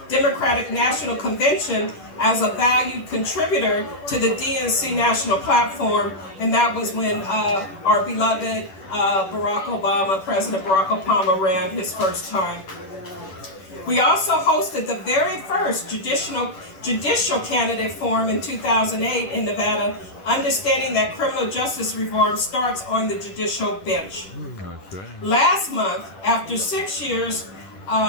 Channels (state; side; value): late; right; 10 ms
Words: Democratic National Convention as a valued contributor to the DNC National Platform, and that was when our beloved President Barack Obama ran his first time. We also hosted the very first judicial candidate forum in 2008 in Nevada, understanding that criminal justice reform starts on the judicial bench. Last month, after 6 years